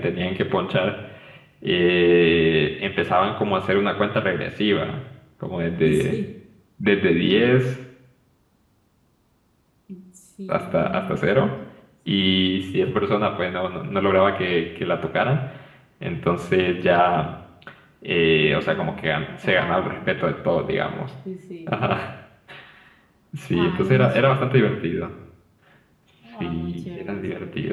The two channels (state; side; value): identical; both; correlation 1.00